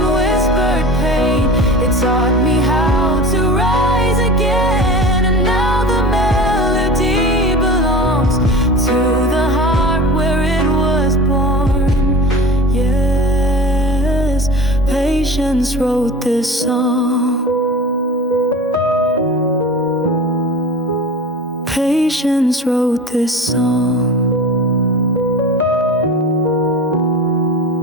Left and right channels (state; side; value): normal; both; correlation 0.35